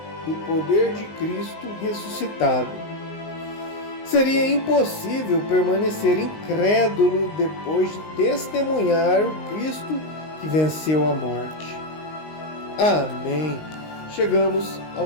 do poder de Cristo ressuscitado. Seria impossível permanecer incrédulo depois de testemunhar o Cristo que venceu a morte. Amém. Chegamos ao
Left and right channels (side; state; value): right; late; 19 ms